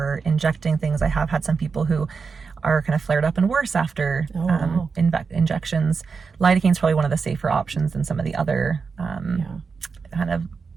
injecting things. I have had some people who are kind of flared up and worse after injections. Lidocaine is probably one of the safer options than some of the other kind of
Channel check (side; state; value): left; quieter; 5.2 dB